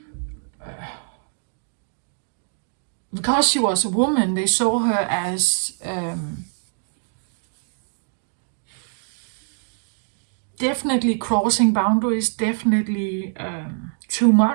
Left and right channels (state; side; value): silent; left; digital silence